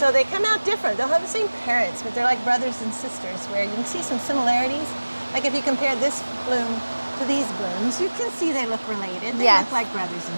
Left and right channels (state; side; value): inverted; both; correlation -1.00